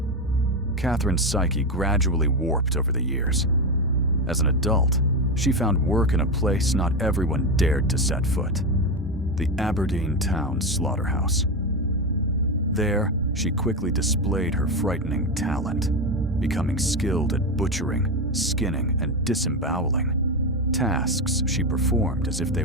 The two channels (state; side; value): normal; both; correlation 0.14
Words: Katherine's psyche gradually warped over the years. As an adult, she found work in a place not everyone dared to set foot, the Aberdeen town slaughterhouse. There, she quickly displayed her frightening talent, becoming skilled at butchering, skinning, and disemboweling, tasks she performed as if